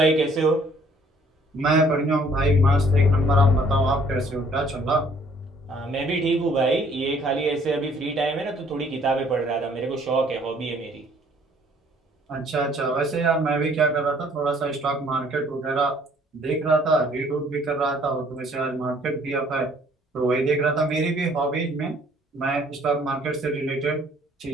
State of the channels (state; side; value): normal; both; correlation 0.60